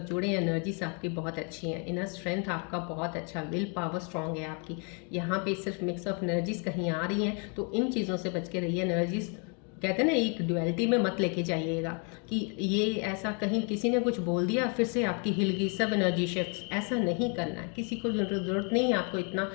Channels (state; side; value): quieter; right; 37.2 dB